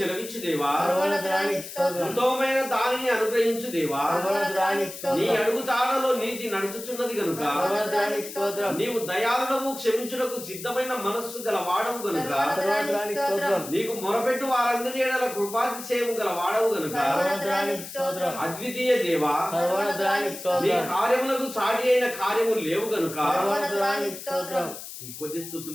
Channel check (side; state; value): left; noise; hiss, 11 dB below the sound